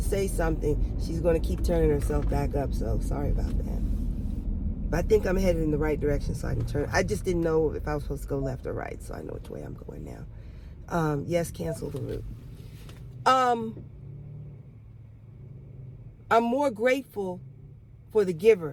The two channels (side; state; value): both; identical; correlation 1.00